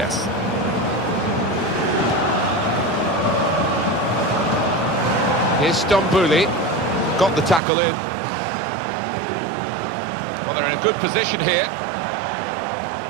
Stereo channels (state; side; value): drops out; left; at 7.6 s